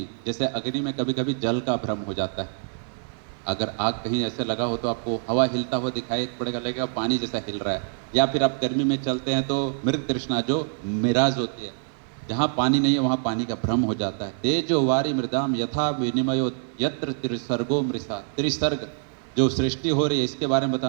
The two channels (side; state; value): left; silent; 61 dB below the other